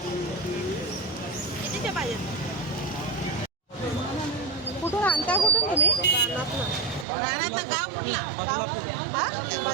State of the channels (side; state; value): left; drops out; at 7.1 s